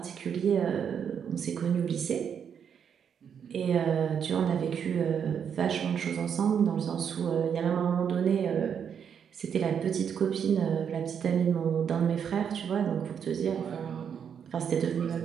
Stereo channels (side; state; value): left; quieter; 7.7 dB